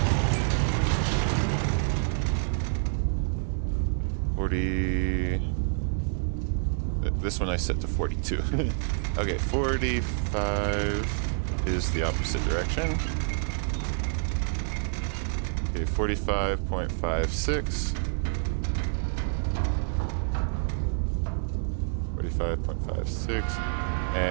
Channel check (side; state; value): left; silent; 59 dB below the other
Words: 40. This one I set to 42. Okay, 45 is the opposite direction. Okay, 45.56. 45.56